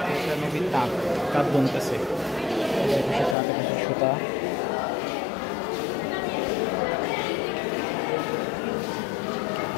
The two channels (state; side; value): drops out; right; at 3.4 s